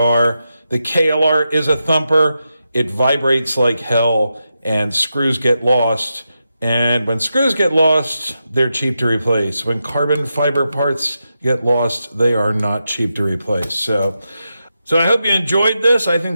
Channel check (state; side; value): inverted; both; correlation -0.87